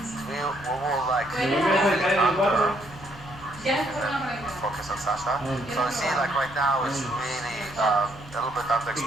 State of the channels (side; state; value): both; normal; correlation 0.70